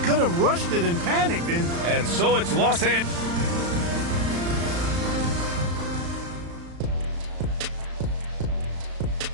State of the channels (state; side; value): late; left; 35 ms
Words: could have rushed it and panicked. And so it's Los Angeles.